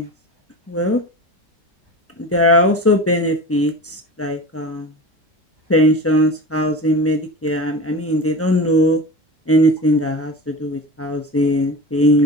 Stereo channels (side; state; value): both; normal; correlation 0.31